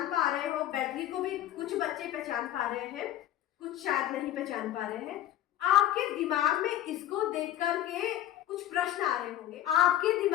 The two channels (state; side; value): quieter; right; 12.7 dB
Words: पा रहे हो? बैटरी को भी कुछ बच्चे पहचान पा रहे हैं, कुछ शायद नहीं पहचान पा रहे हैं। आपके दिमाग में इसको देख करके कुछ प्रश्न आ रहे होंगे। आपके